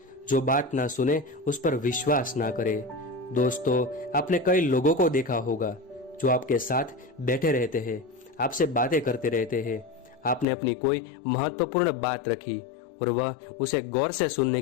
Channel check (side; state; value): right; drops out; at 10.5 s